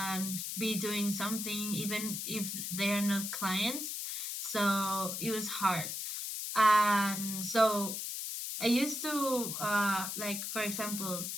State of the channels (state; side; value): noise; left; hiss, 4 dB below the sound